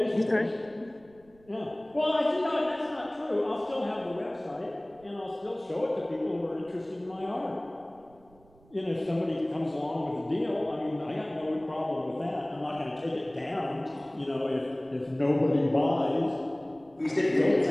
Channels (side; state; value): right; noise; rumble, 28 dB below the sound